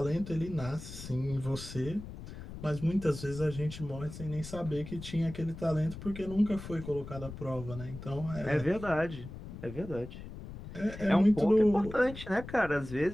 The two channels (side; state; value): left; noise; rumble, 12 dB below the sound